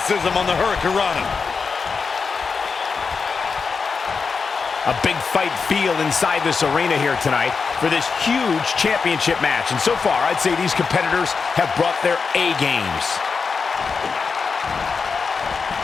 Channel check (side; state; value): right; quieter; 5.2 dB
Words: on the hurricanrana. A big fight feel inside this arena here tonight for this huge championship match. And so far, I'd say these competitors have brought their A games.